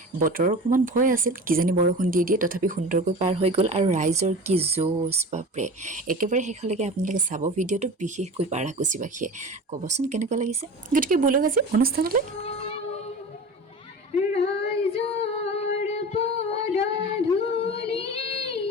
বতৰৰ অকণমান ভয় আছিল কিজানি বৰষুণ দি দিয়ে তথাপি সুন্দৰকৈ পাৰ হৈ গ'ল আৰু ৰাইজৰ কি জোচ বাপৰে একেবাৰে শেষলৈকে আপোনালোকে চাব ভিডিঅ'টো বিশেষকৈ পাৰাকুচিবাসীয়ে ক'বচোন কেনেকুৱা লাগিছে গতিকে বলক আজি অনুষ্ঠানলৈ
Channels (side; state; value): both; normal; correlation 0.34